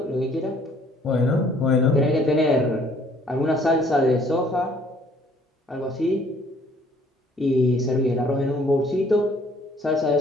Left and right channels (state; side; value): normal; both; correlation 0.60